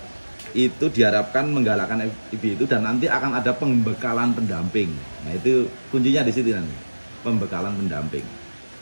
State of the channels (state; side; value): inverted; both; correlation -1.00